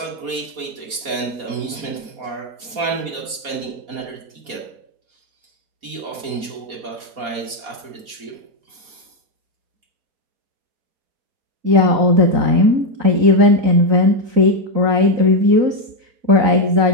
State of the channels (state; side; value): late; left; 4.1 ms